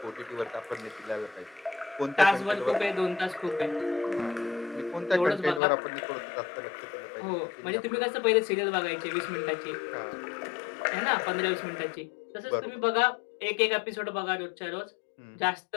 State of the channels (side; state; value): right; drops out; at 5.6 s